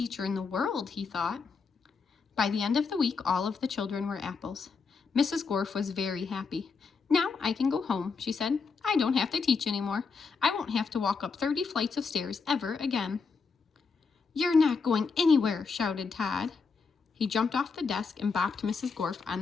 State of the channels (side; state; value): right; quieter; 5.0 dB